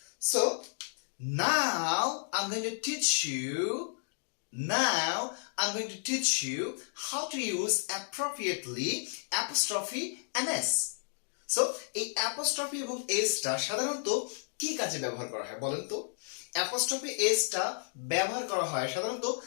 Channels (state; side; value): silent; right; digital silence